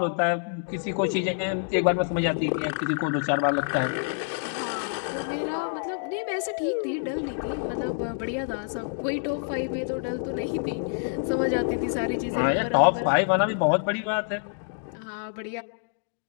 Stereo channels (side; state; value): right; silent; digital silence